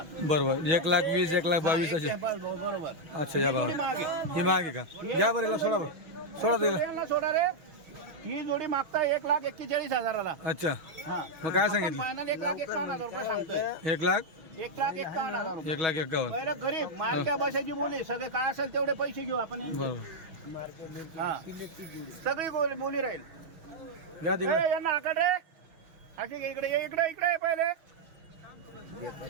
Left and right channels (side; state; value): left; late; 6.2 ms